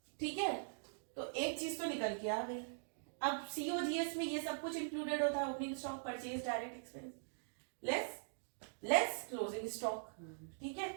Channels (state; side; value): silent; left; digital silence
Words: ठीक है, तो एक चीज तो निकल के आ गई। अब COGS में ये सब कुछ इंक्लूडेड होता है, opening stock, purchase, direct expense, less closing stock. ठीक है,